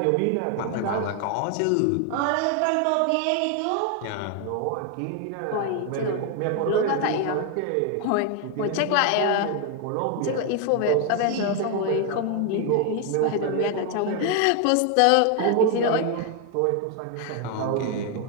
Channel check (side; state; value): both; different; correlation 0.01